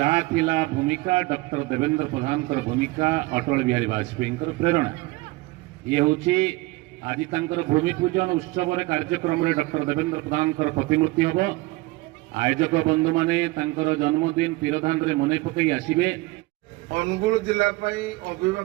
ଥିଲା ଭୂମିକା ଡକ୍ଟର ଦେବେନ୍ଦ୍ର ପ୍ରଧାନଙ୍କର ଭୂମିକା ଅଟଳ ବିହାରୀ ବାଜପେୟୀଙ୍କର ପ୍ରେରଣା। ଇଏ ହେଉଛି ଆଜି ତାଙ୍କର ଭୂମି ପୂଜନ ଉତ୍ସବରେ କାର୍ଯ୍ୟକ୍ରମରେ ଡକ୍ଟର ଦେବେନ୍ଦ୍ର ପ୍ରଧାନଙ୍କର ପ୍ରତିମୂର୍ତ୍ତି ହେବ। ଆୟୋଜକ ବନ୍ଧୁମାନେ ତାଙ୍କର ଜନ୍ମଦିନ ତୀରଧାନରେ ମନେ ପକାଇ ଆସିବେ। ଅନୁଗୁଳ ଜିଲ୍ଲା ପାଇଁ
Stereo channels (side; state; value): left; quieter; 21.8 dB